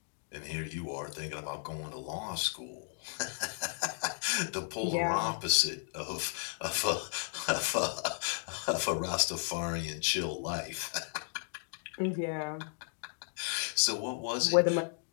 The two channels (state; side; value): silent; right; digital silence